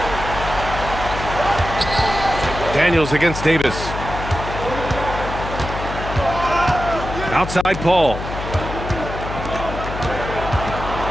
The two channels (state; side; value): noise; left; hum, 7 dB below the sound